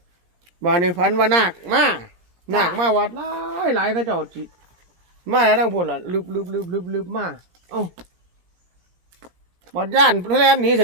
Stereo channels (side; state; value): left; late; 17 ms